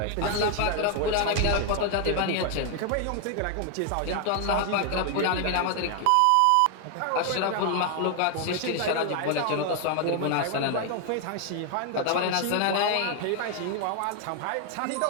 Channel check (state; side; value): different; both; correlation 0.00